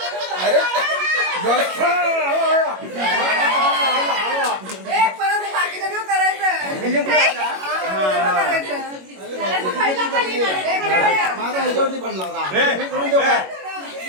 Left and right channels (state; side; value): late; left; 21 ms